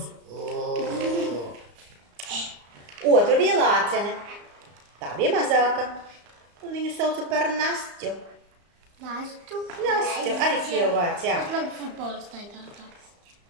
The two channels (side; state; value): left; late; 34 ms